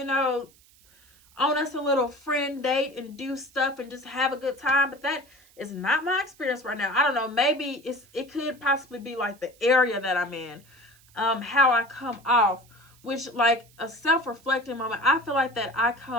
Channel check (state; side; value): noise; right; hiss, 28 dB below the sound